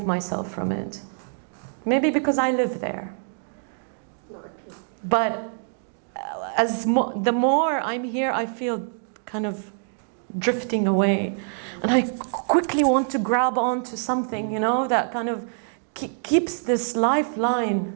myself from it. Maybe because I live there. But the more I'm here, I feel kind of drifting away. And I quickly want to grab onto something, that kind of keeps this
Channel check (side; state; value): left; silent; digital silence